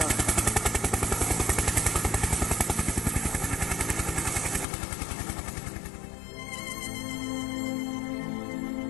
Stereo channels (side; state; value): right; drops out; at 4.7 s